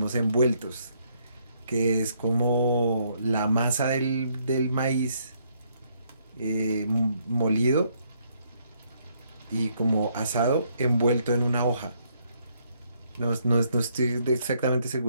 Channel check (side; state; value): both; inverted; correlation -0.71